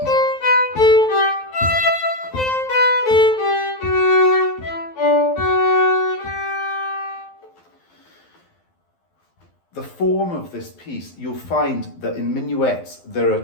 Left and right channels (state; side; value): late; right; 12 ms